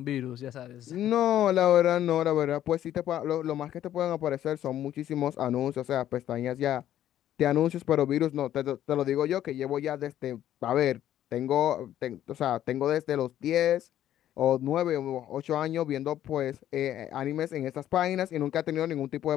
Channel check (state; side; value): quieter; right; 11.8 dB